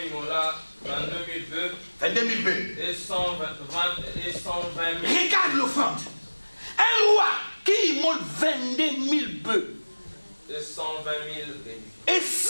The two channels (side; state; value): both; inverted; correlation -1.00